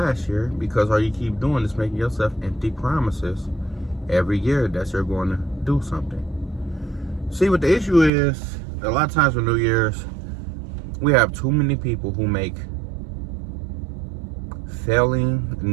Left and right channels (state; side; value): drops out; left; at 8.1 s